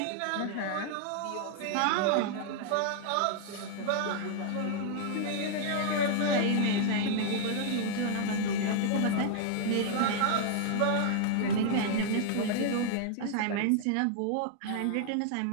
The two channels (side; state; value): both; different; correlation 0.00